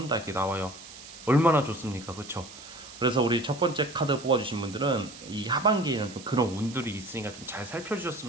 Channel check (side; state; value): right; noise; hiss, 16 dB below the sound